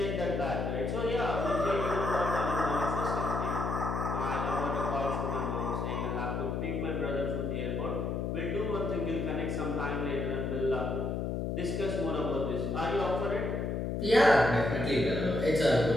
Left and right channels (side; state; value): left; noise; hum, 1 dB below the sound